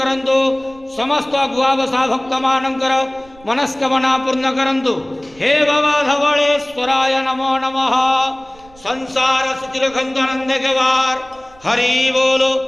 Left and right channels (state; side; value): noise; right; rumble, 26 dB below the sound